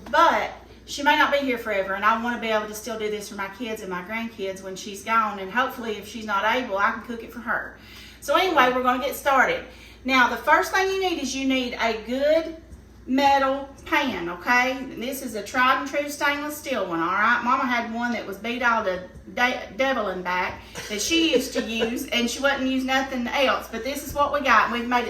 But she may not be here forever, and I want to be able to still do this for my kids and my grandkids when she's gone. And hopefully, if she's not able, I can cook it for her. So anyway, we're going to get started. Now, the first thing you need is you need a good metal pan, okay? And this is a tried and true stainless steel one, all right? Mama had one that was beat all the devil and back that she used to use, and she wouldn't use nothing else. But this is what we got, and we've made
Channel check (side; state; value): both; identical; correlation 1.00